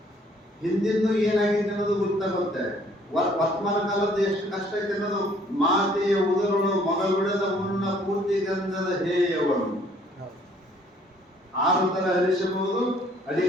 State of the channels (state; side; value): normal; both; correlation 0.61